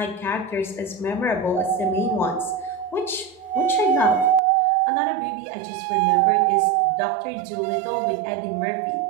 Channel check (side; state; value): left; drops out; at 4.4 s